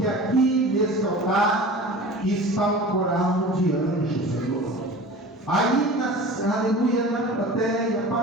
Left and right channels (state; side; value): normal; both; correlation 0.38